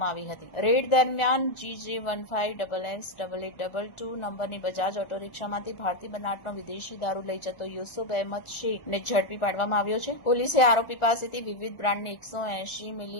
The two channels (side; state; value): right; late; 1.4 ms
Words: આવી હતી. રેડ દરમિયાન GJ15XX8822 નંબરની બજાજ ઓટો રિક્ષામાંથી ભારતીય બનાવટનો વિદેશી દારૂ લઈ જતો યુસુફ અહેમદ શેખને ઝડપી પાડવામાં આવ્યો છે. પોલીસે આરોપી પાસેથી વિવિધ બ્રાન્ડની 180